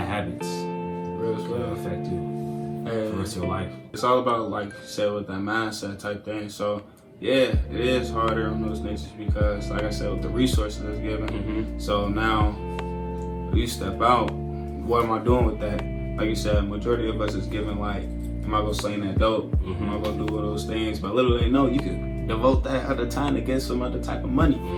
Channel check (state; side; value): identical; both; correlation 1.00